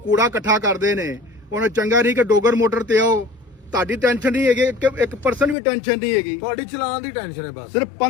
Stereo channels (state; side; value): drops out; right; at 5.6 s